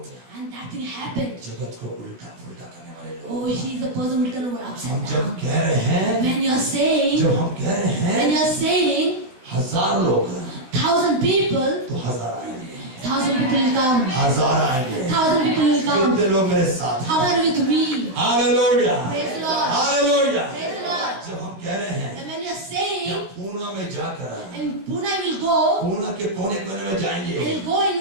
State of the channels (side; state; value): left; late; 16 ms